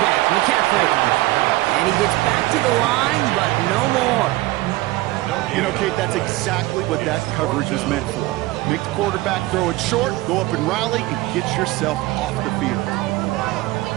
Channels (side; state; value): left; quieter; 18.9 dB